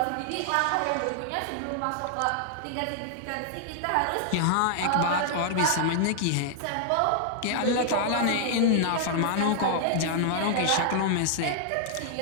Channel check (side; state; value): both; different; correlation -0.01